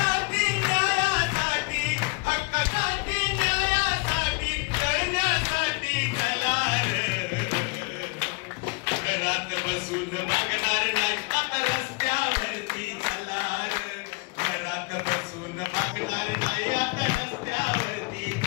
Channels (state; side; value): quieter; right; 29.6 dB